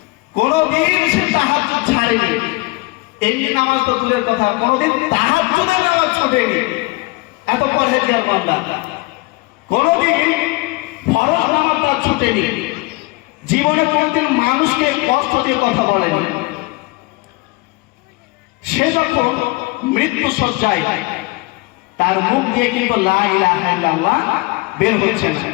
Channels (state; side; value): quieter; right; 24.1 dB